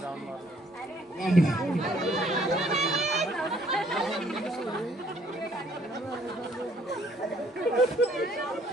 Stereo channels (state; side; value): normal; both; correlation 0.63